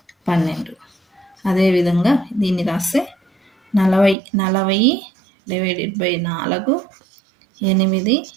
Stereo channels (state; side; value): drops out; left; at 4.2 s